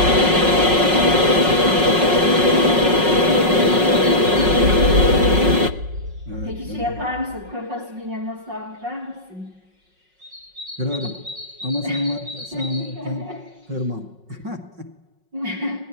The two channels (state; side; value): late; left; 5.4 ms